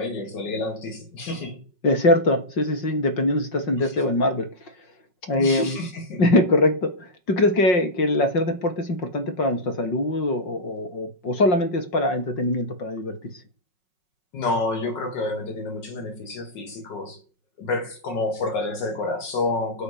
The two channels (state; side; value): late; right; 5.4 ms